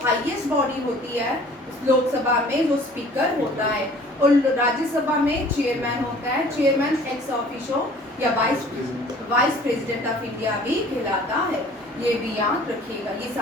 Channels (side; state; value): both; normal; correlation 0.50